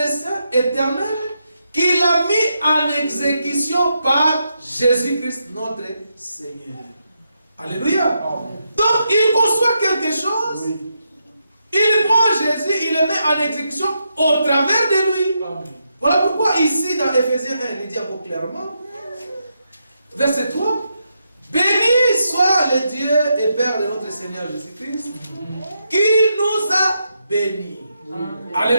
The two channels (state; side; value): inverted; both; correlation -0.83